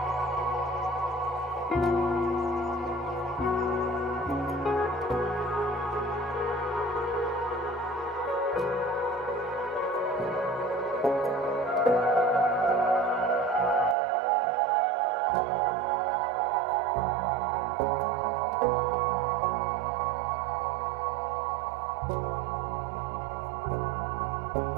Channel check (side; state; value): left; drops out; at 14.0 s